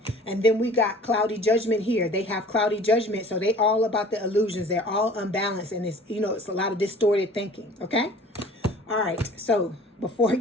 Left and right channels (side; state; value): both; normal; correlation 0.47